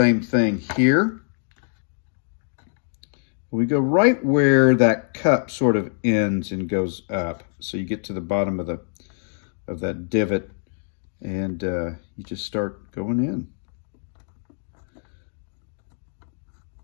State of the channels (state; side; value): silent; right; 57 dB below the other